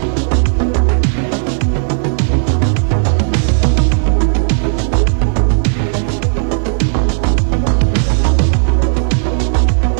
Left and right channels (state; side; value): silent; left; digital silence